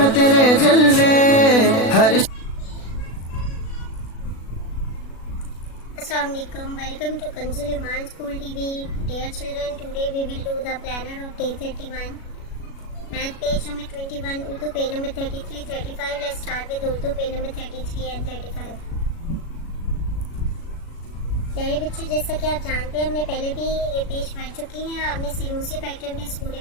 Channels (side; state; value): right; late; 36 ms